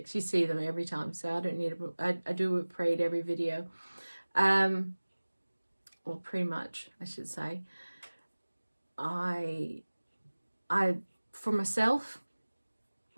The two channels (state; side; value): inverted; both; correlation -1.00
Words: You see them every time, so I don't need I do a whip parade every video. Well, pretty much, I should say. For myself,